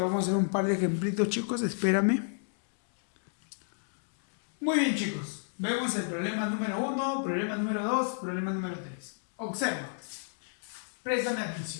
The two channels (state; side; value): silent; right; digital silence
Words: vamos a hacer un par de ejemplitos, chicos, espérame. Muy bien, chicos. Vemos el problema número 1, problema número 2, problema número 3. Observa. Préstame